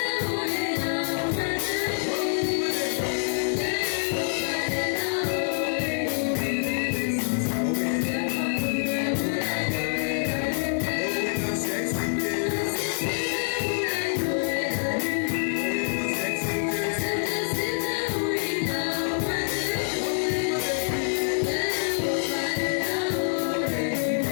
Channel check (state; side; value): silent; right; 57 dB below the other